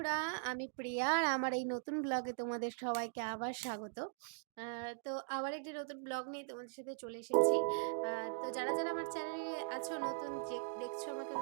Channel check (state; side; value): silent; left; digital silence